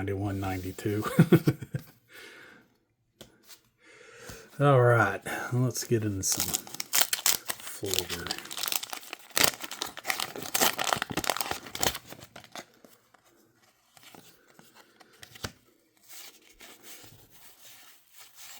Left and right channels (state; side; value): identical; both; correlation 1.00